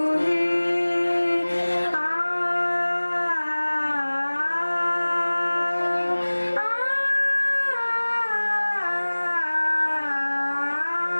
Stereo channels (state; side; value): inverted; both; correlation -1.00